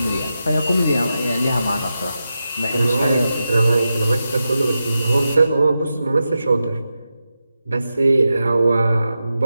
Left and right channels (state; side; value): inverted; both; correlation -0.90